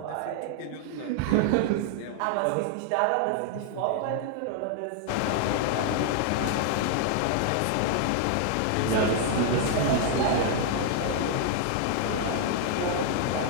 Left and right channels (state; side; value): different; both; correlation 0.00